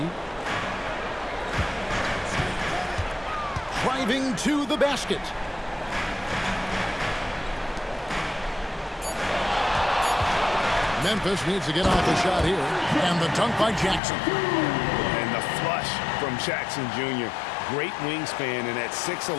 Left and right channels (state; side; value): drops out; right; at 14.0 s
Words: Driving to the basket. Memphis needs to get off the shot here. And the dunk by Jackson. And the flush from Jackson Jr. Great wingspan, and at